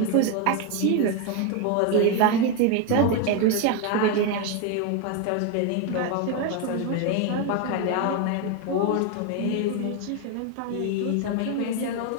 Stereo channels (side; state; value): both; different; correlation 0.02